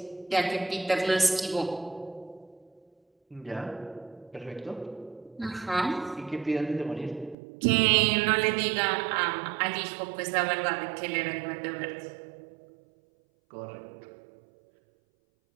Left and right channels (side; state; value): left; drops out; at 7.4 s